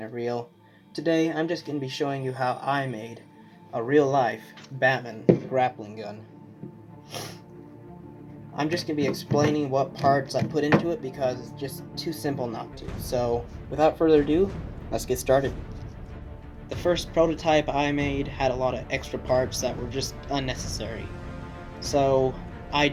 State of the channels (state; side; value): identical; both; correlation 1.00